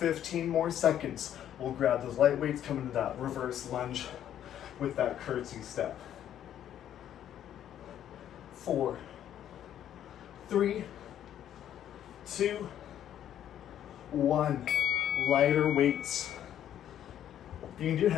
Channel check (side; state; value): right; quieter; 10.7 dB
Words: more seconds. We'll grab those light weights, come into that reverse lunge with that curtsy step. 4, 3, 2, 1. Lighter weights. You can do